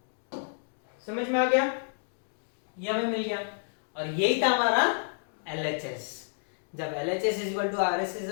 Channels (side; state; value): right; silent; digital silence